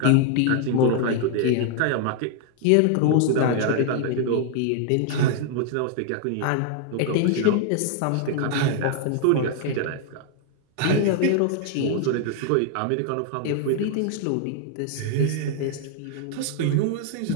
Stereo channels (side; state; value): both; different; correlation 0.00